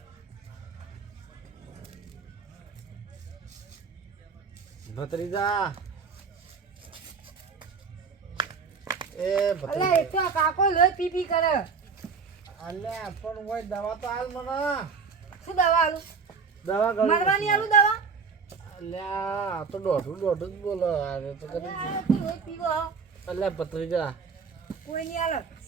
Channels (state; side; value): quieter; left; 5.4 dB